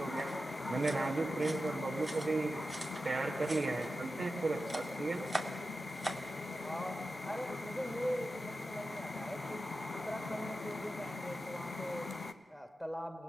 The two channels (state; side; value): normal; both; correlation 0.91